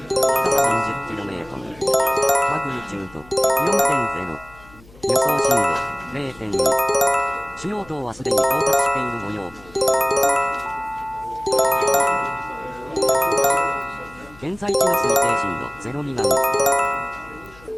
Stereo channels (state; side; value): noise; left; hum, 24 dB below the sound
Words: 深さ 30km、マグニチュード 4.0、予想震度 0.2、主要島はすでに到達している模様。現在地の推定震度0未満。